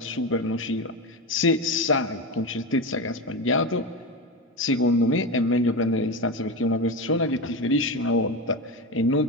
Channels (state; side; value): normal; both; correlation 0.19